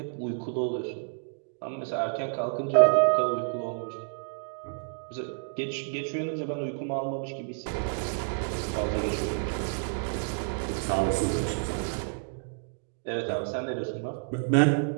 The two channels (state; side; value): silent; left; digital silence